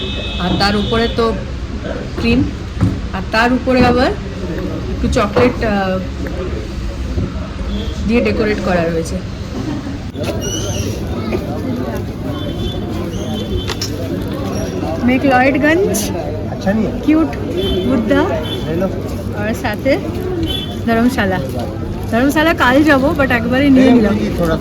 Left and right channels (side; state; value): both; identical; correlation 1.00